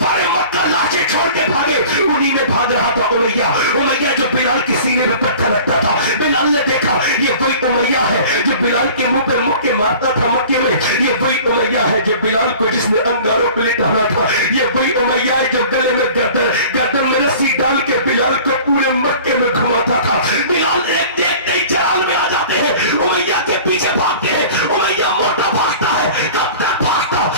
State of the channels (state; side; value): inverted; both; correlation -0.43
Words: मक्का लाशें छोड़ के भागे। उन्हीं में भाग रहा था उमैया जो बिलाल के सीने में पत्थर रखता था। बिलाल ने देखा ये वही उमैया है जो बिलाल के मुंह पे मुक्के मारता था मक्के में। ये वही उमैया है जो बिलाल को जिसने अंगारों पे लिटाना था। ये वही उमैया है जो गले में गर्दन में रस्सी डाल के बिलाल को पूरे मक्के में घुमाता था।